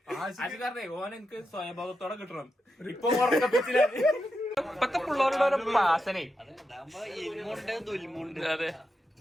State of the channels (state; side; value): normal; both; correlation 0.86